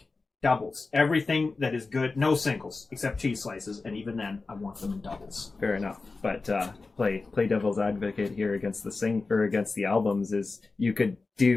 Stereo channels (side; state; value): right; quieter; 3.9 dB